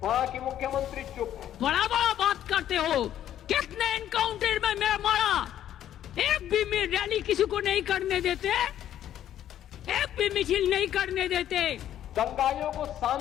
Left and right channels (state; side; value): quieter; right; 11.3 dB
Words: वहां की मुख्यमंत्री चुप है। बड़ा बड़ा बात करते हो, कितने एनकाउंटर में मैं मारा, एक भी रैली किसी को नहीं करने देते, एक भी मिছিল नहीं करने देते। दंगाइयों को